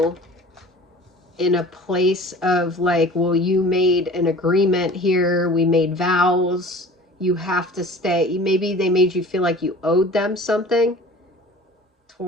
in a place of like, well, you made an agreement here. We made vows. you have to stay. Maybe they made you feel like you owed them something.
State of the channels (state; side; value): normal; both; correlation 0.43